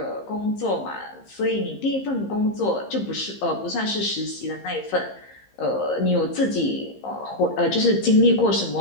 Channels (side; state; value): right; late; 15 ms